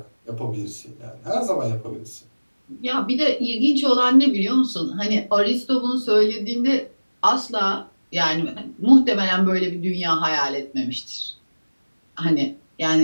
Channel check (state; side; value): inverted; both; correlation -1.00